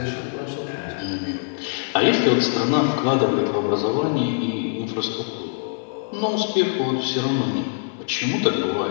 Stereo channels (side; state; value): right; silent; digital silence